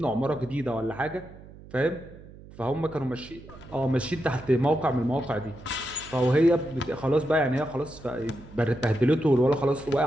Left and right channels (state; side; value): noise; right; hum, 19 dB below the sound